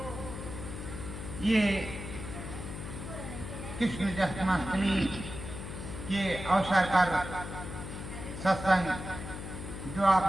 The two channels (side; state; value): left; noise; hum, 8 dB below the sound